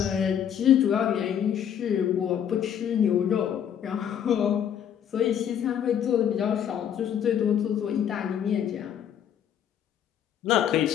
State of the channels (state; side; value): quieter; right; 9.2 dB